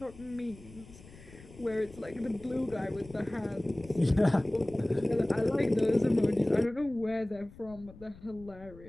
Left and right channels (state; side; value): noise; left; rumble, 20 dB below the sound